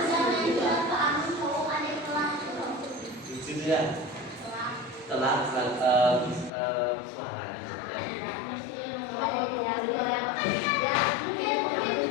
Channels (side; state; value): right; drops out; at 6.5 s